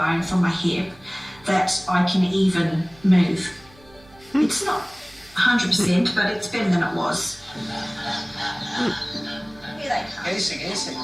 from my hip that I can even move. It's not 100%, but it's better than it was.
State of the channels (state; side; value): noise; right; hum, 26 dB below the sound